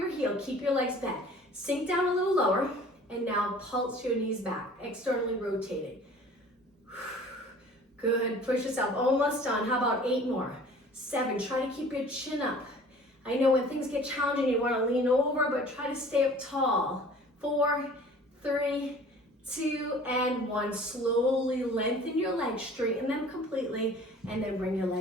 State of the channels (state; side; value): normal; both; correlation 0.48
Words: heel, keep your legs bent. Sink down a little lower, and now pulse your knees back, externally rotating. Good, push yourself, almost done. How about 8 more? 7, try to keep your chin up. I know when things get challenging, you want to lean over, but try to stay up tall. 4, 3, 2, and 1. Slowly lengthen your legs, straighten them completely, and then bring your